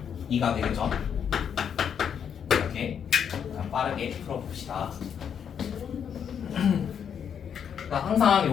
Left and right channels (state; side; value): quieter; right; 8.0 dB